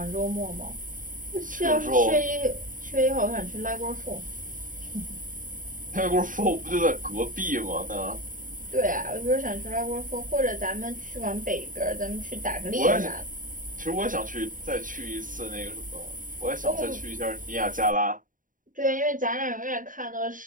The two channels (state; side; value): late; left; 0.39 ms